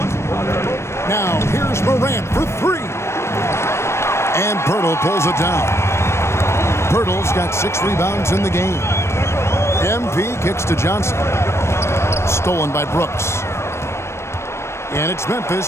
Now here's Morant for 3. And Pirtle pulls it down. Pirtle's got 6 rebounds in the game. MP kicks to Johnson. Stolen by Brooks. And it's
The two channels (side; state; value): right; late; 0.13 ms